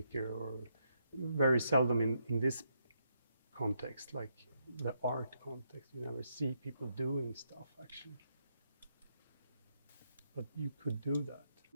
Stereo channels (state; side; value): inverted; both; correlation -0.78